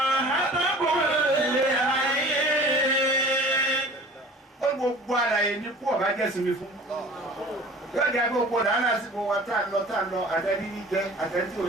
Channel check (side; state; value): both; normal; correlation 0.44